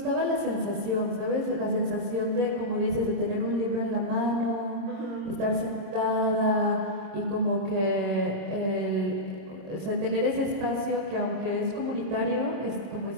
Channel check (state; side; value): late; left; 26 ms